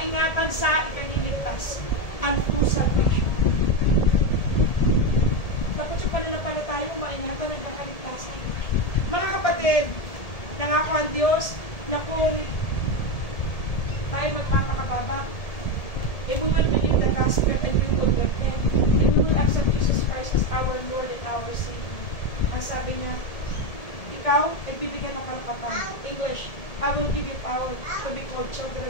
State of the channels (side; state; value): right; late; 1.7 ms